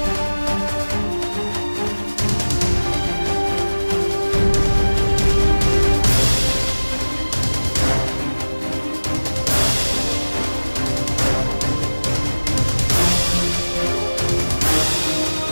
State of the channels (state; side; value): inverted; both; correlation -1.00